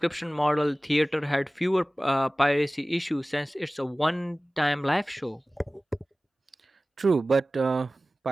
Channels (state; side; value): normal; both; correlation 0.97